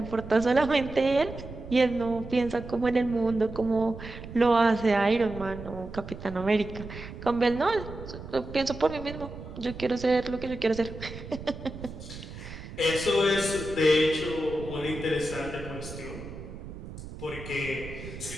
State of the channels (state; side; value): noise; right; rumble, 12 dB below the sound